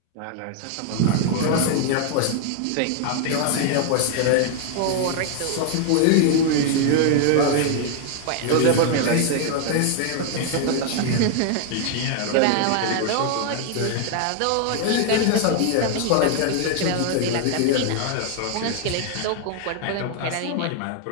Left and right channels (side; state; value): both; different; correlation 0.00